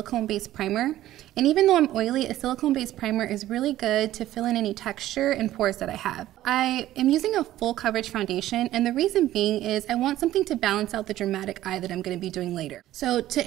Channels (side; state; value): left; quieter; 14.0 dB